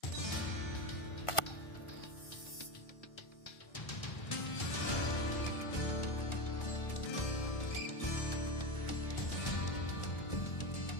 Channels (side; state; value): right; late; 1.4 ms